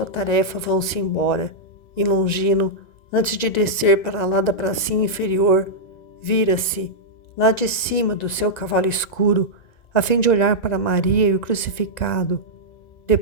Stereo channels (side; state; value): right; late; 1.9 ms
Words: tarefa, vão-se embora, e Longino, antes de descer para lá da pracinha inferior, vira-se, lá de cima do seu cavalo escuro, a fim de olhar para Maria e o crucificado.